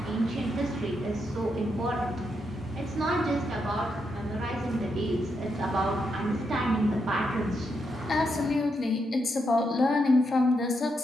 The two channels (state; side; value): normal; both; correlation 0.81